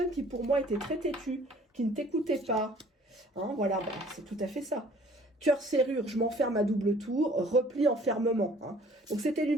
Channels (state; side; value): normal; both; correlation 0.54